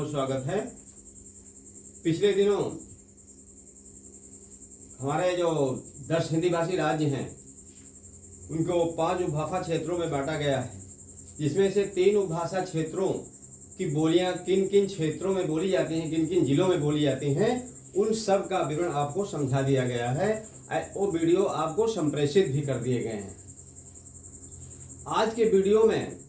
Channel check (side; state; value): both; identical; correlation 1.00